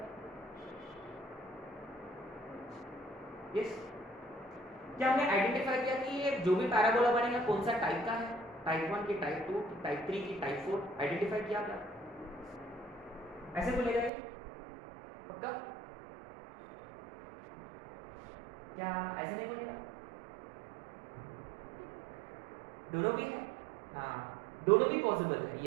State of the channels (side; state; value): left; drops out; at 14.1 s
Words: यस, क्या हमने आइडेंटिफाई किया कि ये जो भी पैराबोला बनेगा कौन सा टाइप का है? टाइप 1 की, टाइप 2 की, टाइप 3 की, टाइप 4 आइडेंटिफाई किया क्या? ऐसे बोलेगा ये पक्का? क्या ऐसे नहीं बोलेगा? दोनों भी है, हाँ दोनों भी पॉसिबल है।